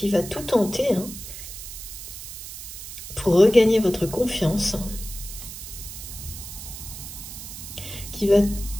va tout tenter hein, pour regagner votre confiance, qui va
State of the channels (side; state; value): right; noise; hiss, 11 dB below the sound